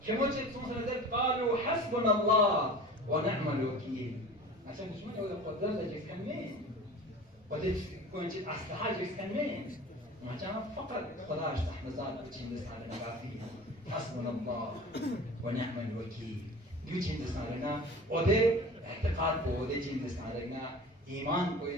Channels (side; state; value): both; normal; correlation 0.39